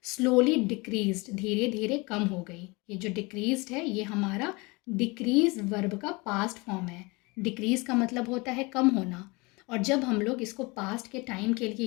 स्लोली डिक्रीज्ड, धीरे धीरे कम हो गई। ये जो डिक्रीज्ड है ये हमारा डिक्रीज वर्ब का पास्ट फॉर्म है। डिक्रीज का मतलब होता है कम होना, और जब हम लोग इसको पास्ट के टाइम के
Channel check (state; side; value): quieter; right; 26.0 dB